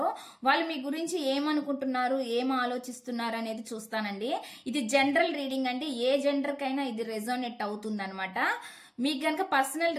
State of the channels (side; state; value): both; identical; correlation 1.00